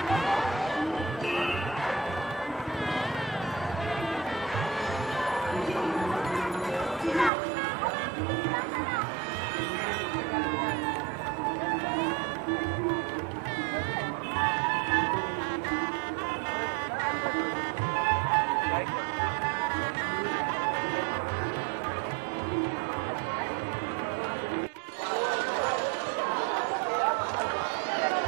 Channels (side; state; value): left; drops out; at 7.3 s